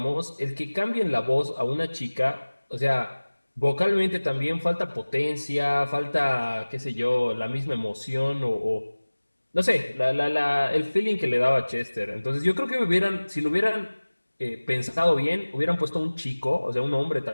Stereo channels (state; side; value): inverted; both; correlation -1.00